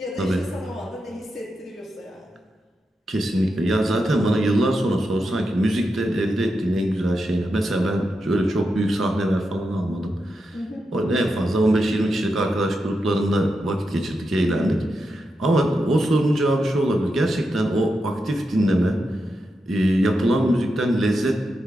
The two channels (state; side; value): normal; both; correlation 0.87